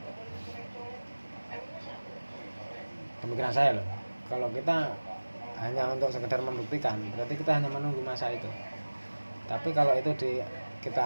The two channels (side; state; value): both; inverted; correlation -1.00